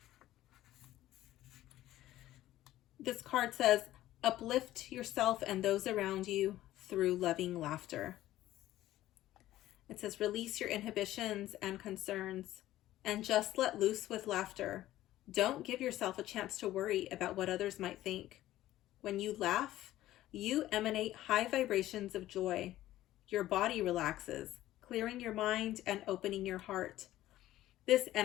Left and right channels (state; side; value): quieter; right; 14.6 dB